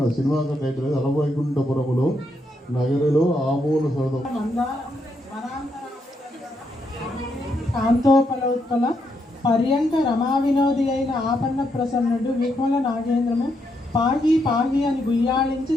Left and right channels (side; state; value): both; normal; correlation 0.79